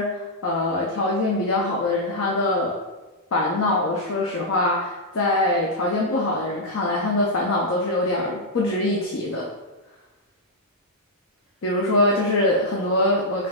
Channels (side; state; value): both; normal; correlation -0.06